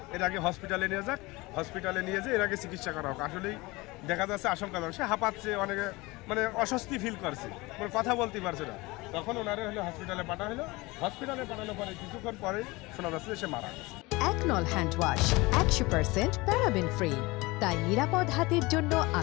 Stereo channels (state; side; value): quieter; right; 22.7 dB